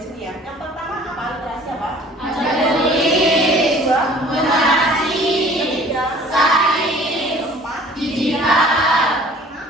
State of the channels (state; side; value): normal; both; correlation 0.50